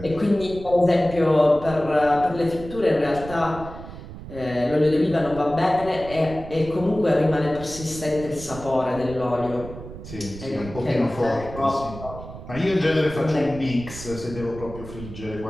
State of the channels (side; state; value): right; noise; rumble, 13 dB below the sound